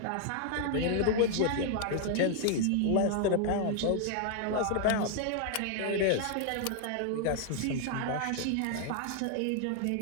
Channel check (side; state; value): both; different; correlation 0.00